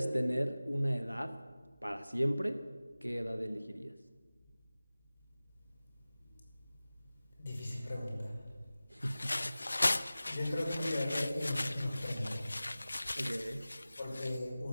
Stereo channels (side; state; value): both; inverted; correlation -0.97